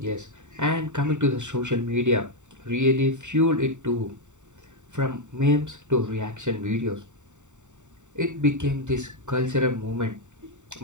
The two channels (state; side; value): late; left; 0.84 ms